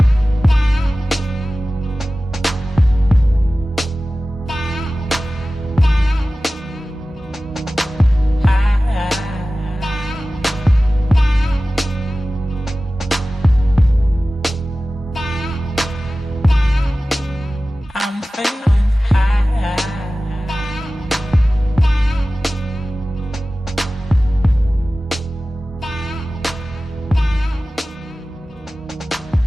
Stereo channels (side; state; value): both; normal; correlation 0.96